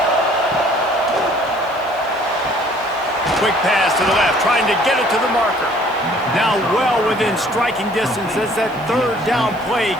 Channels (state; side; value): noise; right; hiss, 26 dB below the sound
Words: Quick pass to the left, trying to get it to the marker. Now well within striking distance as that 3rd down play